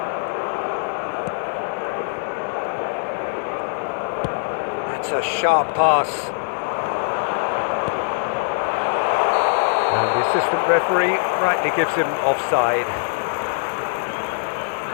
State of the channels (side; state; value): right; silent; 60 dB below the other